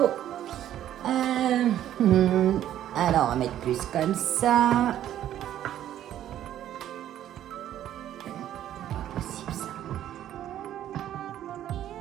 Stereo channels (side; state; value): left; quieter; 11.7 dB